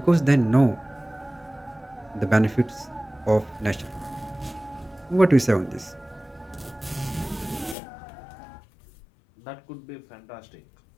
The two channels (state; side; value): drops out; right; at 7.8 s